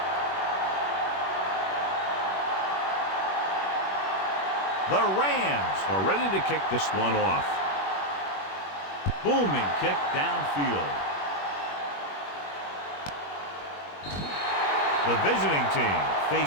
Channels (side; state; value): right; late; 21 ms